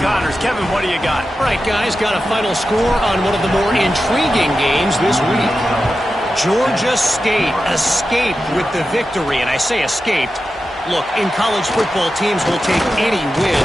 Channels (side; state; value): both; normal; correlation 0.91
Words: Connors. Kevin, what do you got? All right, guys, got a final score on one of the more intriguing games this week. Georgia State escaped with the victory, and I say escaped. Look, in college football, teams will take any win,